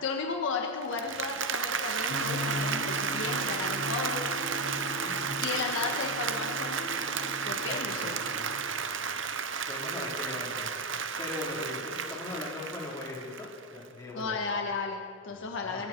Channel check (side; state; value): both; normal; correlation 0.08